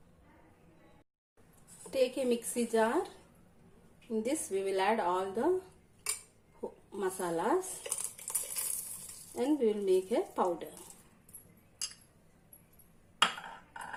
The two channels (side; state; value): both; identical; correlation 1.00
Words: Take a mixie jar. In this we will add all the masalas and we will make a powder.